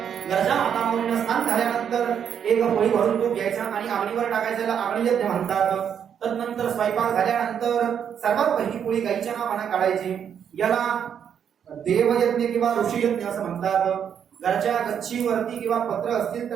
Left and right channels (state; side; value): quieter; left; 8.2 dB